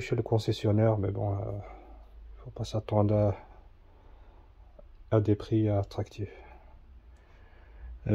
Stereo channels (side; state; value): both; identical; correlation 1.00